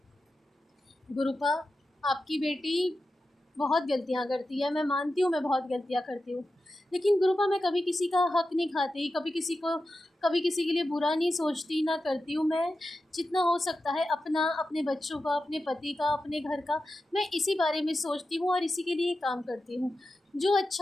गुरुपा, आपकी बेटी बहुत गलतियाँ करती है, मैं मानती हूँ मैं बहुत गलतियाँ करती हूँ, लेकिन गुरुपा मैं कभी किसी का हक नहीं खाती, कभी किसी के लिए बुरा नहीं सोचती, ना करती हूँ। मैं जितना हो सकता है अपना, अपने बच्चों का, अपने पति का, अपने घर का, मैं इसी बारे में सोचती हूँ और इसी के लिए काम करती हूँ। जो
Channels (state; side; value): normal; both; correlation 0.91